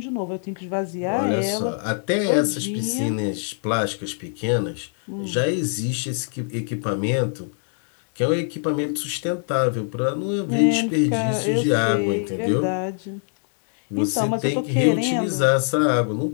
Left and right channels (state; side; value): silent; right; 63 dB below the other